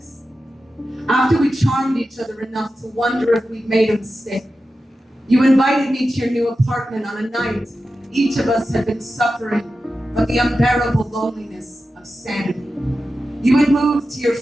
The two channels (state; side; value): normal; both; correlation 0.92